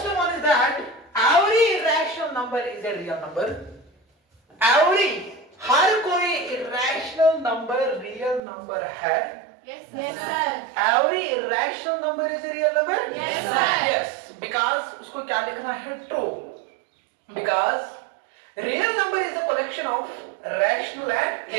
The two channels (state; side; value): drops out; left; at 8.4 s